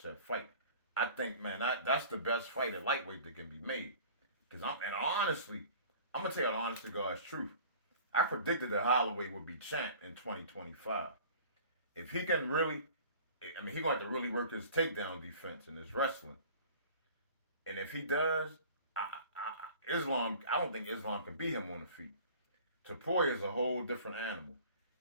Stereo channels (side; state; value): both; inverted; correlation -0.45